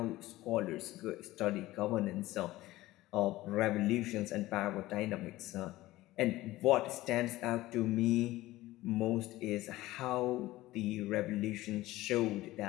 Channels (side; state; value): right; quieter; 17.3 dB